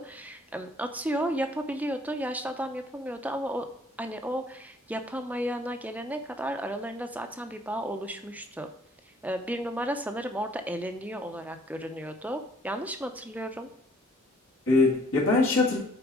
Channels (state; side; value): normal; both; correlation 0.61